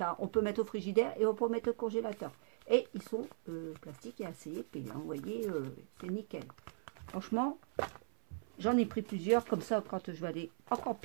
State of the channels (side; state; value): left; silent; 52 dB below the other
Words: on peut mettre au frigidaire et on peut mettre au congélateur. Et ils sont plastiques et assez épais. Hein, vous voyez, c'est nickel. Franchement, j'en ai pris plusieurs. Comme ça, quand je vais aller en